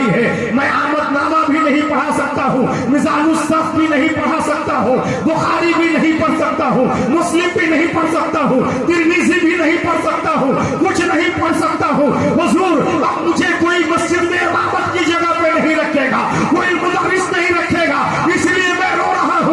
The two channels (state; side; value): identical; both; correlation 1.00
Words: है, मैं आमदनामा भी नहीं पढ़ा सकता हूँ, मिजानुस्सफ भी नहीं पढ़ा सकता हूँ, बुखारी भी नहीं पढ़ सकता हूँ, मुस्लिम भी नहीं पढ़ सकता हूँ, तिरमिज़ी भी नहीं पढ़ सकता हूँ, कुछ नहीं पढ़ सकता हूँ। हुजूर अब मुझे कोई मस्जिद में इमामत की जगह पे नहीं रखेगा, कोई मुदर्रिस नहीं रखेगा, इसलिए मैं रो रहा